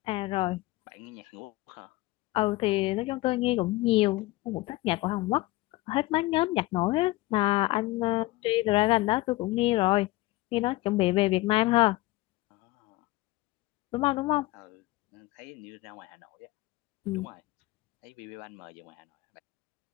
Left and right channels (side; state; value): right; quieter; 19.3 dB